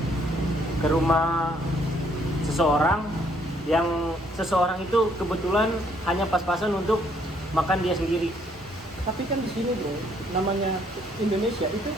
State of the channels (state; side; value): normal; both; correlation 0.67